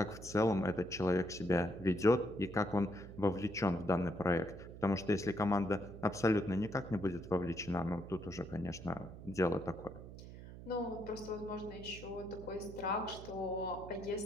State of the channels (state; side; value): noise; right; hum, 13 dB below the sound